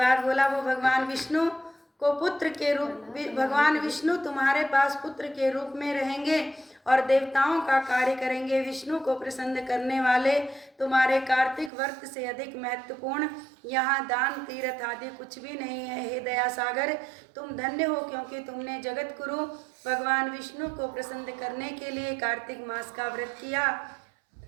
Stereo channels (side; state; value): left; drops out; at 11.7 s